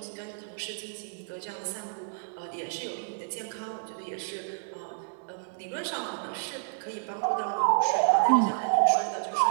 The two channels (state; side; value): silent; left; digital silence